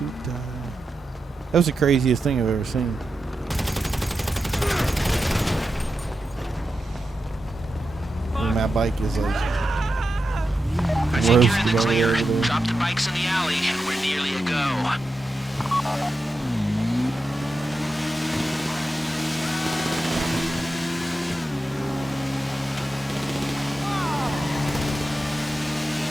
That was the craziest thing I've ever seen. And my bike is like I think you're in roasted the over clear. there. Drop the bikes in the alley, and we're nearly a go.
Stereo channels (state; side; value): normal; both; correlation 0.89